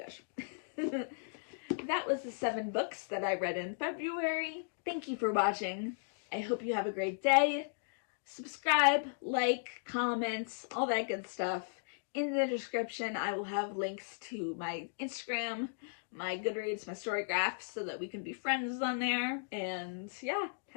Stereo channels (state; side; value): silent; right; digital silence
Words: That was the 7 books that I read in February. Thank you for watching. I hope you have a great day. Subscribe, like, comment, all that good stuff. In the description, I will have links to my Instagram, my Goodreads, my Storygraph, so that we can be friends on there. And yeah,